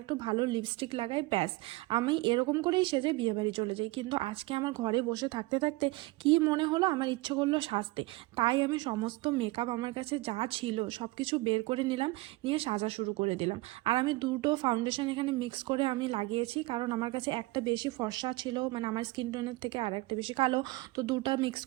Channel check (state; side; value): quieter; left; 21.2 dB